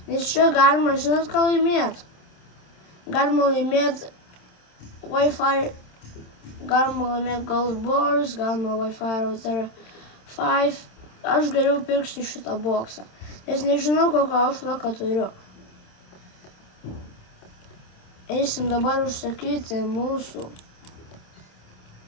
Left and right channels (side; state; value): right; late; 26 ms